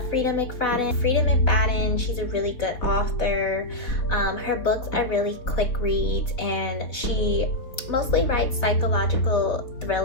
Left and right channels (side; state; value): right; late; 4.0 ms